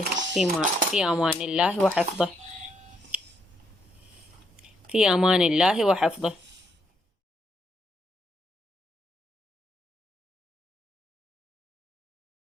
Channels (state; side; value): normal; both; correlation 0.75